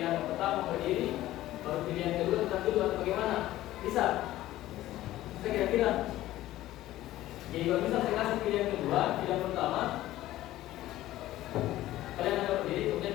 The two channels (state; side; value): quieter; right; 15.1 dB